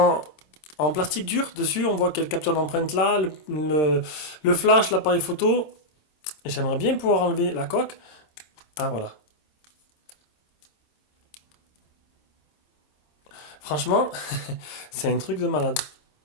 plastique dur dessus, on voit quelle capture d'empreinte là, le flash, l'appareil photo. J'aimerais bien pouvoir enlever la coque. Ah voilà. Franchement, c'est un truc de malade.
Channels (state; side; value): late; right; 26 ms